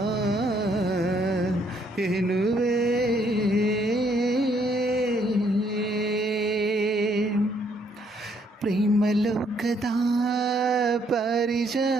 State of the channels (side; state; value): both; normal; correlation 0.69